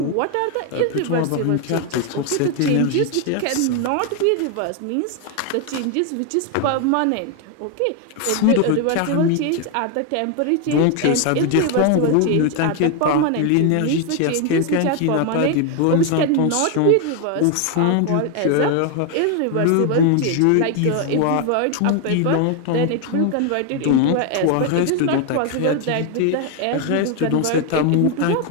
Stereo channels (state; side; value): different; both; correlation 0.01